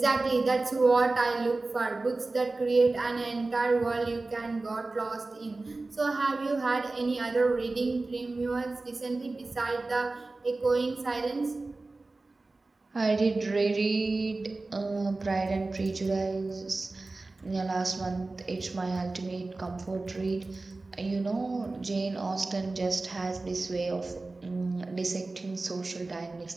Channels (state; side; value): quieter; left; 3.3 dB